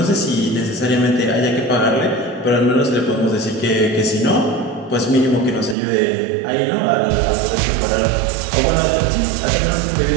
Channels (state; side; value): drops out; left; at 5.8 s